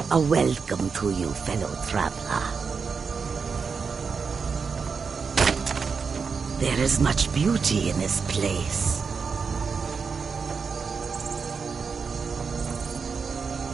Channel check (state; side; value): quieter; left; 5.5 dB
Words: A welcome to you, fellow traveler. There is much beauty in this place.